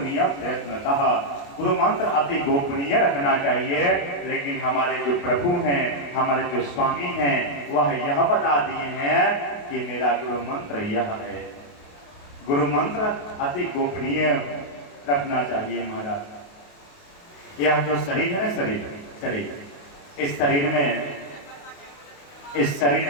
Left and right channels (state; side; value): late; right; 29 ms